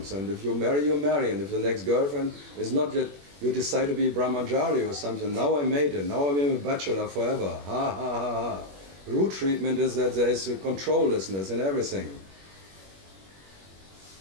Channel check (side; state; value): left; late; 21 ms